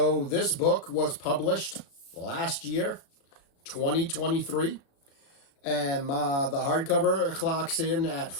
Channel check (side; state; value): right; late; 36 ms